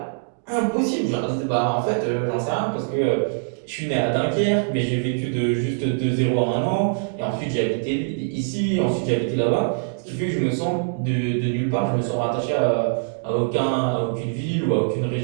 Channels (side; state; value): left; silent; digital silence